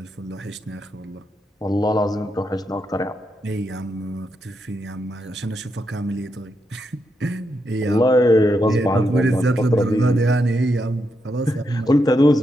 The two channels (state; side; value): normal; both; correlation 0.83